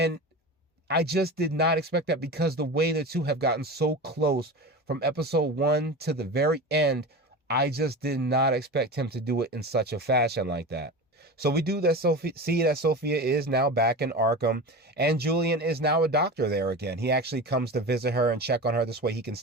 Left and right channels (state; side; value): normal; both; correlation 0.29